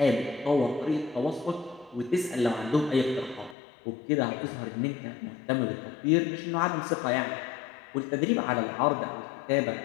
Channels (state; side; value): drops out; right; at 3.6 s